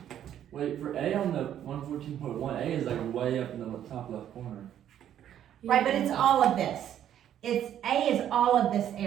Wait, for A on the 114.1, A is like way up in the top left corner. Right, but it's all of this. It's A is all of this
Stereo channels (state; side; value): quieter; left; 10.5 dB